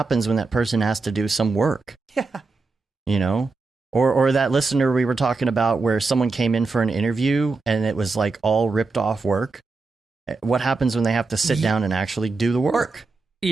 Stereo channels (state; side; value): quieter; left; 3.9 dB